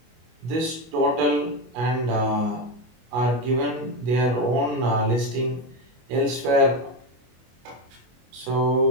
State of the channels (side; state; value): left; late; 25 ms